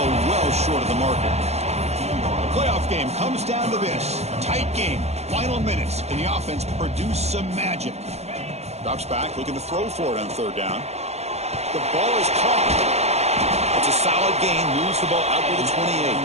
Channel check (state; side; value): late; left; 0.31 ms